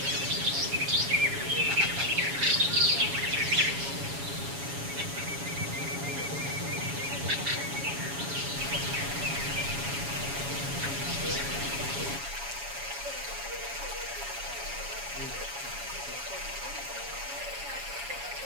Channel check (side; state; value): left; late; 7.2 ms